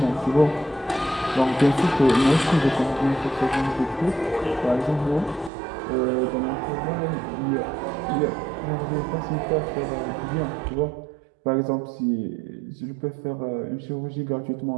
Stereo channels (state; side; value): drops out; left; at 5.5 s